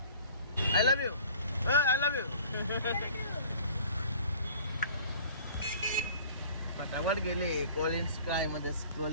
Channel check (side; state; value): both; inverted; correlation -0.49